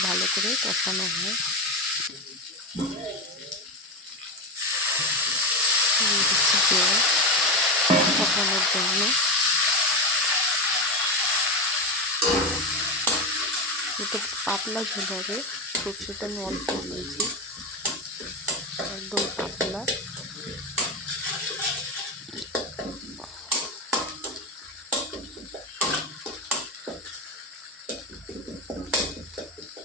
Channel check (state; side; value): normal; both; correlation 0.15